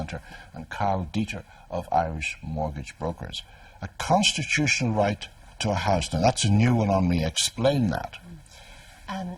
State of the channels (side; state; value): both; identical; correlation 1.00